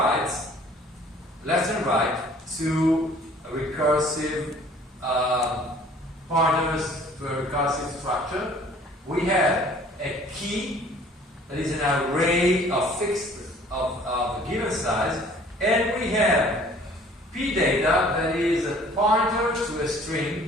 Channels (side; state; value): both; normal; correlation 0.53